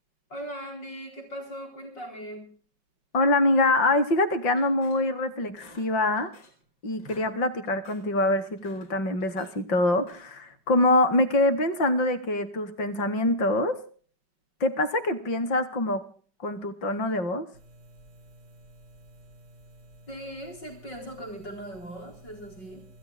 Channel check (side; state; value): right; late; 5.3 ms